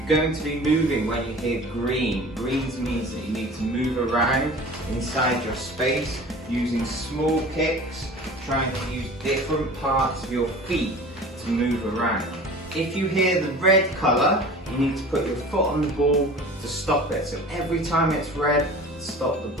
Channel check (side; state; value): both; normal; correlation 0.41